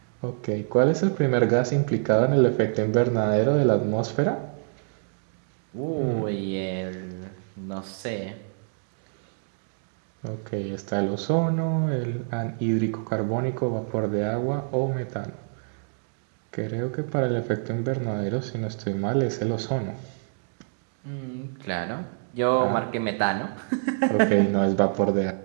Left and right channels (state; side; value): silent; left; digital silence